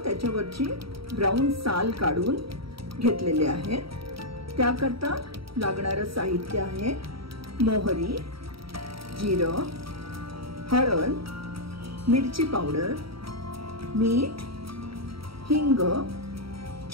त्याच्यावरची ब्राउन साल काढून घेतलेले आहेत। त्याकरता लागणारे साहित्य आहे मोहरी, जिरं, हळद, मिरची पावडर, मीठ, हिंग,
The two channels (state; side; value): late; left; 0.75 ms